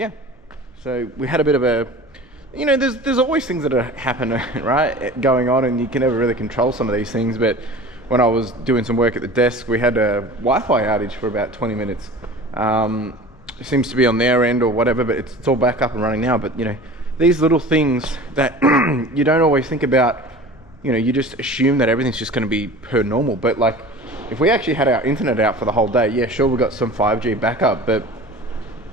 yeah, so we had a bit of a, there's always things that happen, right, going on, and you can never really control some of these things. But when I was doing some work at the desk, we had a Wi-Fi outage for about 20 minutes. It seems to be on their end or whatever, but it's all back up and running now. But these little things that you don't always think about, you just assume that everything's just going to be per normal. But like, if we actually had our internet out for the whole day, yeah, sure, we got some 5G backup, but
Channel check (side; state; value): both; normal; correlation 0.39